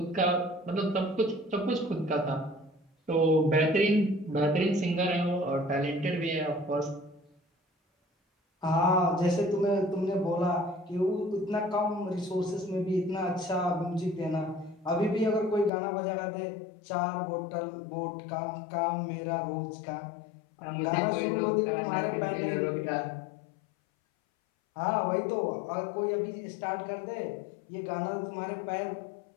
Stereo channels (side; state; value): right; drops out; at 15.7 s